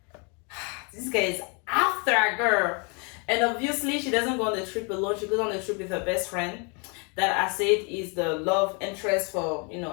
guy is after a girl, and obviously she doesn't go on the trip alone. She goes on the trip with her best friend, that I said is the love interest for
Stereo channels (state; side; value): quieter; right; 33.9 dB